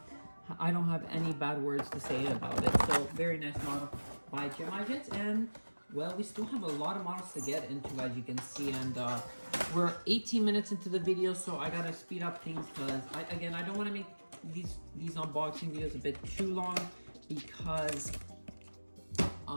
have any bad words to say about it. So very nice model by Gemini Jets. And well, we still have a lot of models to get into, as you can see. And we're 18 minutes into the video, so I gotta speed up things because I don't want to make these unboxing videos a bit too long. Because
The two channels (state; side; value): inverted; both; correlation -1.00